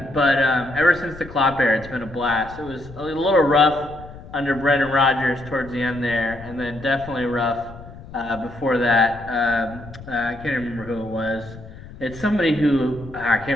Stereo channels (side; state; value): left; noise; rumble, 16 dB below the sound